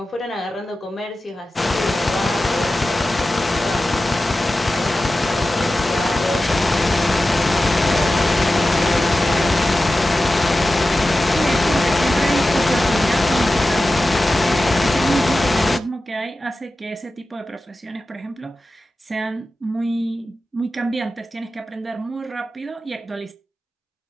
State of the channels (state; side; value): normal; both; correlation 0.94